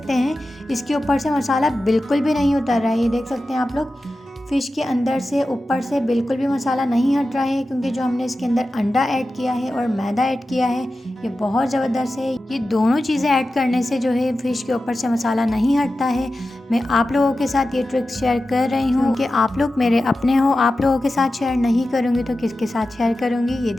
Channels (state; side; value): normal; both; correlation 0.93